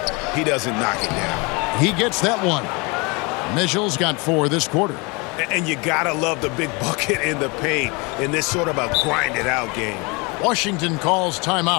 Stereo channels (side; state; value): right; quieter; 28.5 dB